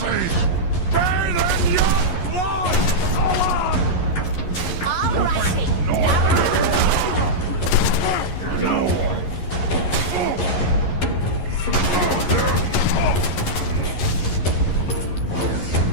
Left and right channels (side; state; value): right; late; 11 ms